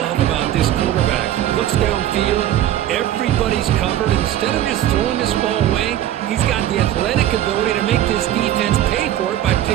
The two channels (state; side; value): quieter; left; 12.3 dB